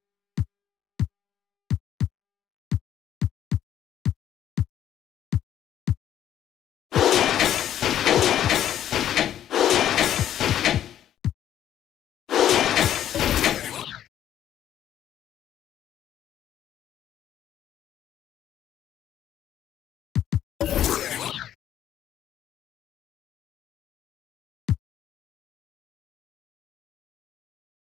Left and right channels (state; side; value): quieter; right; 11.0 dB